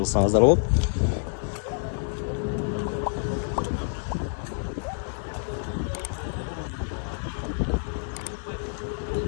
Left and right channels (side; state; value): right; silent; 60 dB below the other